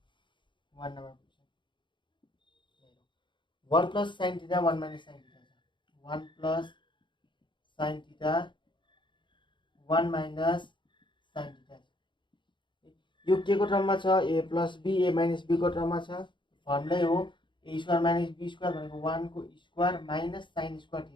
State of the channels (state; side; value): late; right; 0.23 ms